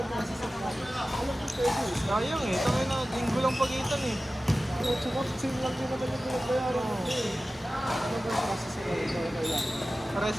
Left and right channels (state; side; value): normal; both; correlation 0.96